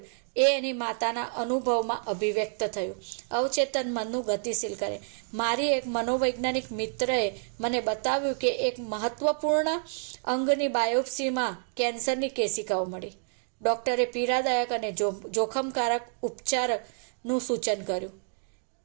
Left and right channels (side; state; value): left; silent; digital silence